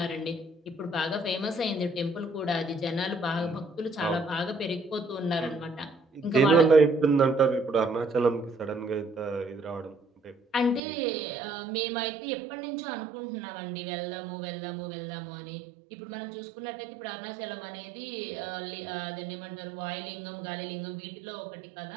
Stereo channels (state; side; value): drops out; left; at 10.8 s